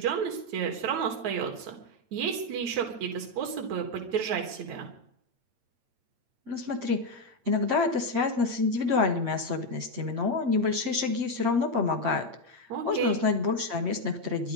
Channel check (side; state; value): left; late; 8.6 ms